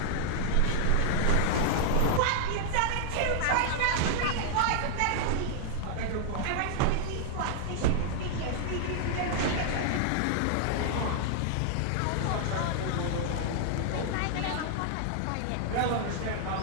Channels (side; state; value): both; different; correlation -0.01